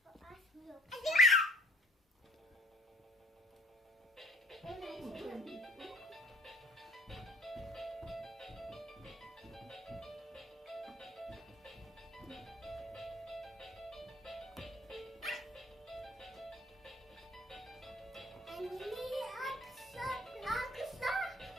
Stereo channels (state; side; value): normal; both; correlation 0.54